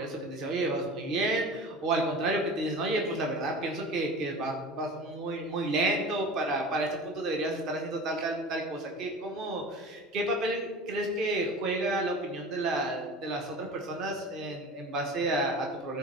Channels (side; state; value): both; normal; correlation 0.36